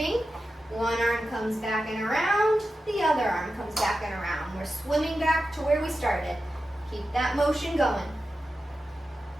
One arm comes back and around. The other arm comes back and around. We're swimming back to where we started. Keep that motion going.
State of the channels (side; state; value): both; normal; correlation 0.92